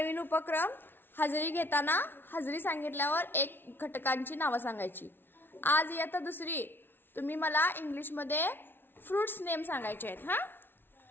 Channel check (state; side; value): late; right; 0.10 ms